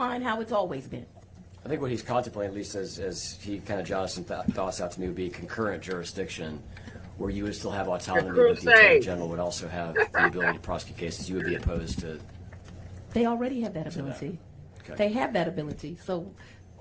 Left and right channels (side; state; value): both; identical; correlation 1.00